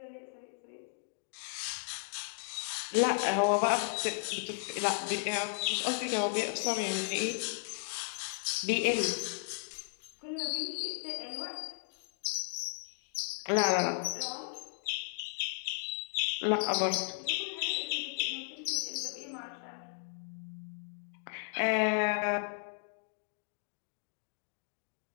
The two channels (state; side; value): silent; right; digital silence